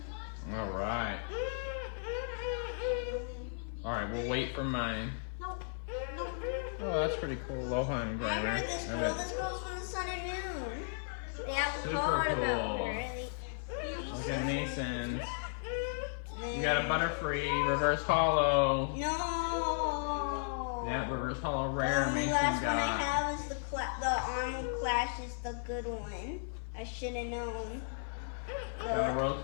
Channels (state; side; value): silent; right; 54 dB below the other